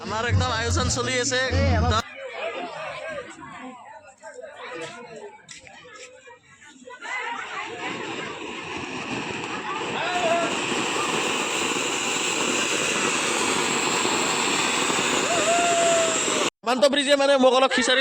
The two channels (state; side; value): identical; both; correlation 1.00